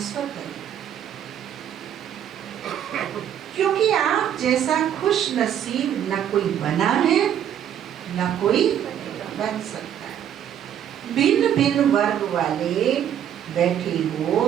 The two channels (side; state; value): left; quieter; 9.8 dB